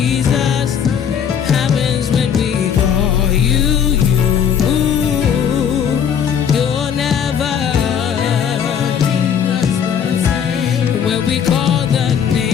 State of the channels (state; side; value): quieter; right; 8.1 dB